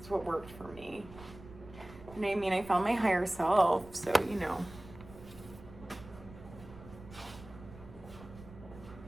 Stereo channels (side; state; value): right; noise; rumble, 17 dB below the sound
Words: what worked for me. And I mean, I found my higher self, so you know.